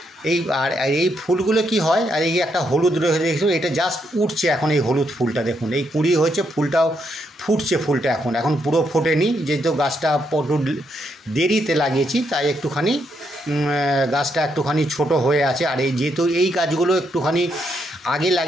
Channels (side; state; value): both; normal; correlation 0.77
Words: আর এই ফুলগুলো কি হয়, আর এই একটা হলুদ রয়েছে দেখুন, এটা জাস্ট উঠছে এখন, এই হলুদ ফুলটা দেখুন, এই কুঁড়ি হয়েছে, ফুলটাও ফুটছে, ফুলটা এখন পুরো ফোটেনি, যেহেতু গাছটা একটু দেরিতে লাগিয়েছি তাই একটুখানি গাছটা একটুখানি ছোট হয়ে আছে। আর যেহেতু এই গাছগুলো একটুখানি আগে